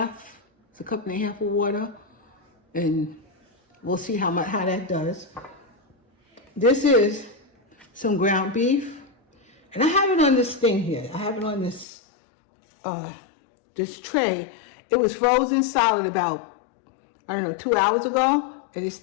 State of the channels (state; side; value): drops out; right; at 11.9 s